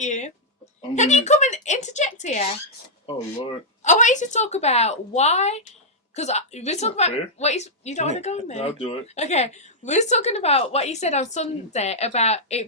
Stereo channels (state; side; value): normal; both; correlation -0.07